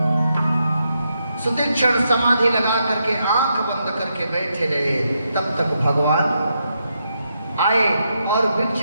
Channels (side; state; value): both; inverted; correlation -0.82